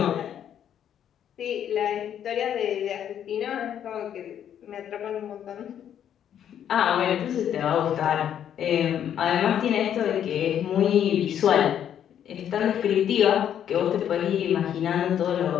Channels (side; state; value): right; quieter; 9.7 dB